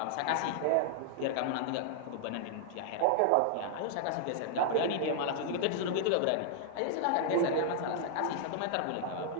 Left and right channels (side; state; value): both; different; correlation 0.00